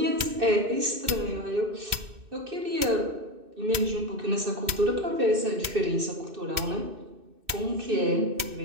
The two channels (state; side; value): late; left; 2.6 ms